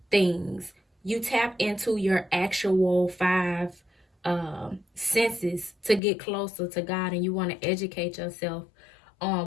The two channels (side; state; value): right; drops out; at 6.0 s